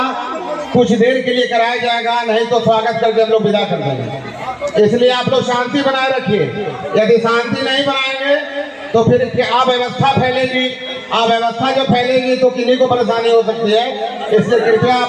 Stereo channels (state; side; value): identical; both; correlation 1.00